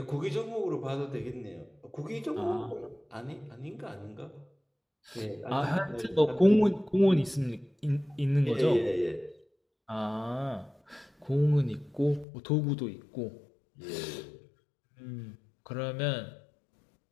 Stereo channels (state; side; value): drops out; right; at 12.2 s